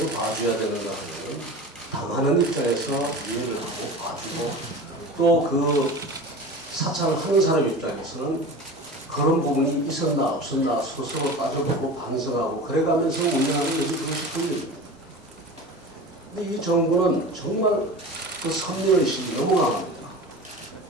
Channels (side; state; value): both; normal; correlation 0.33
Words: 봐줘야 되는가 하면 당하는 입장에서 이해를 하고 봐주고 또 그 사찰을 하는 사람 입장에서는 그런 부분이 있었나 없었나 스스로 따져보고 반성하고 그래가면서 운영하는 것이 그것이 권력입니다. 근데 이 정부는 정말 그 선민의식이 너무 강합니다.